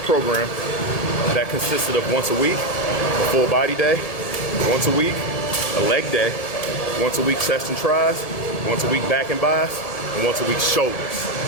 program that consisted of once a week, a full body day, once a week, a leg day, once a week chest and tries, once a week back and bis, and once a week shoulders.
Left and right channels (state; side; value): late; right; 1.7 ms